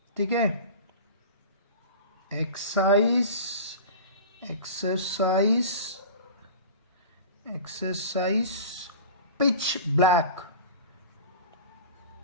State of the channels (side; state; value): both; inverted; correlation -0.35